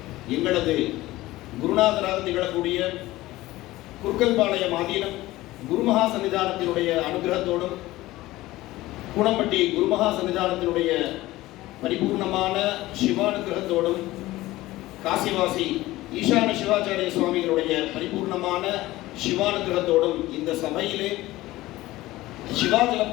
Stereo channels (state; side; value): quieter; right; 17.6 dB